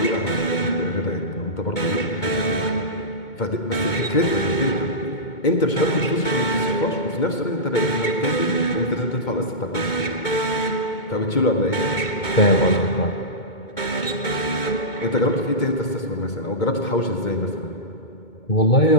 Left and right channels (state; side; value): late; right; 2.2 ms